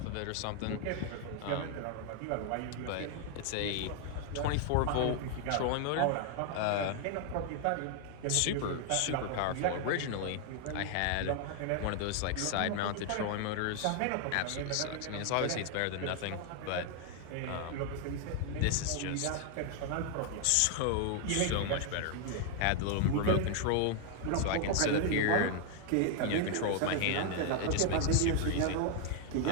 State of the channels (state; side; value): different; both; correlation 0.00